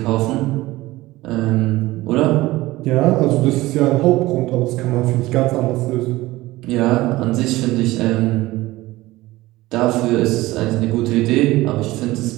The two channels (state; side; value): quieter; left; 18.4 dB